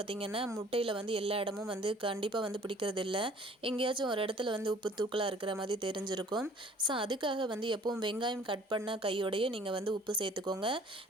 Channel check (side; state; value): both; normal; correlation 0.53